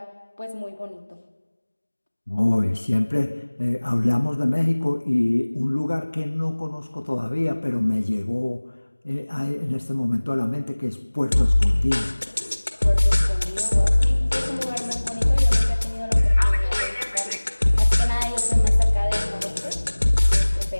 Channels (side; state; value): both; inverted; correlation -1.00